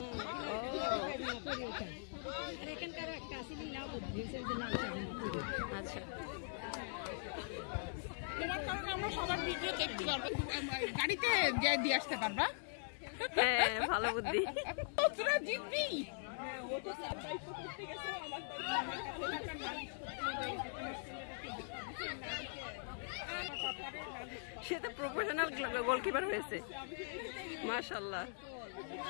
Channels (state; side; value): silent; right; digital silence